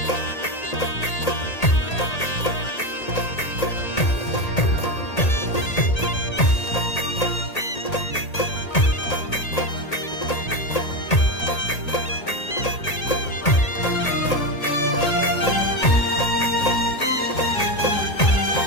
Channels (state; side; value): late; right; 1.8 ms